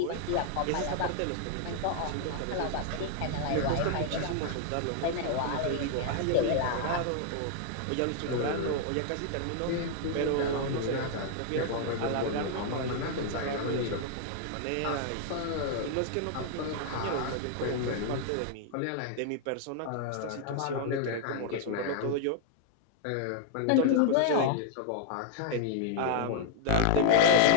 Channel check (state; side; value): different; both; correlation -0.01